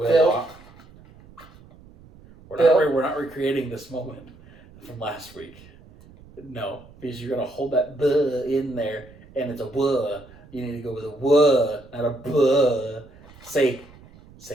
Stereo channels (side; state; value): right; noise; rumble, 23 dB below the sound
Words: We're not recreating this moment from last week. No, because you're going to hold that buh in there, and it's a wuh. You need to go with a wuh, not a buh. Say